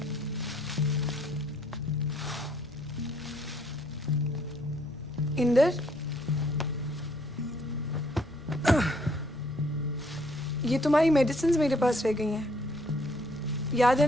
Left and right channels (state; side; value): normal; both; correlation 0.66